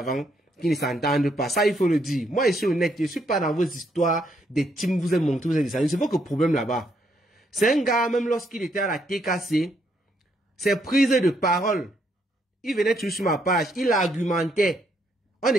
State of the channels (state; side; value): normal; both; correlation 0.74